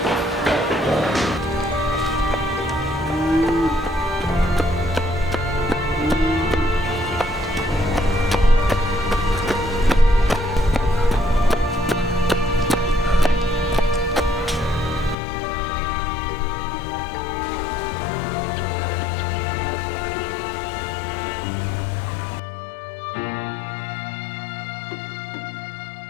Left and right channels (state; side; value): drops out; right; at 15.2 s